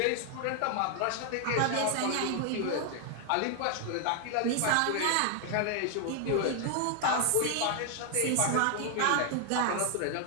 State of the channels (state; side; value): different; both; correlation 0.00